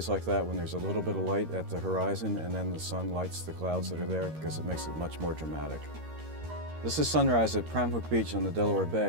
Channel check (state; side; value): late; left; 13 ms